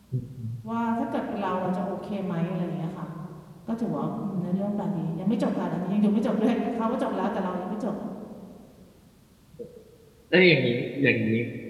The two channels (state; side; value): identical; both; correlation 1.00